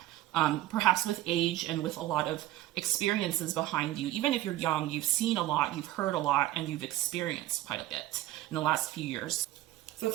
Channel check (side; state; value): left; quieter; 15.1 dB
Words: Perhaps with age and with a lot of experiences behind you. Even if you're young, you've seen a lot, you've heard a lot, and you've experienced quite a bit in the last few years. So the